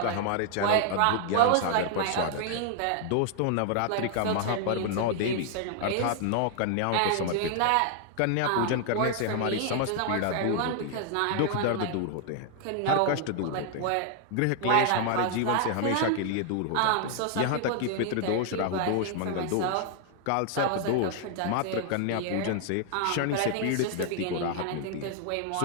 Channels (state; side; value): different; both; correlation 0.00